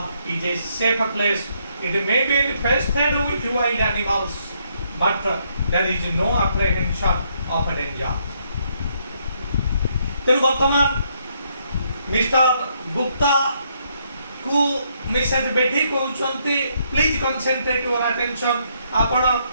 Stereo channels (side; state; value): both; inverted; correlation -0.73